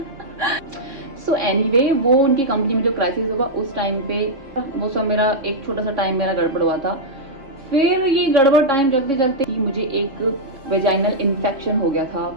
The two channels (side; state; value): left; late; 3.6 ms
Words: सो एनीवे, वो उनकी कंपनी में जो क्राइसिस हुआ उस टाइम पे, वो सब मेरा एक छोटा सा टाइम मेरा गड़बड़ हुआ था। फिर ये गड़बड़ टाइम चलते चलते ही मुझे एक वेजाइनल इन्फेक्शन हो गया था,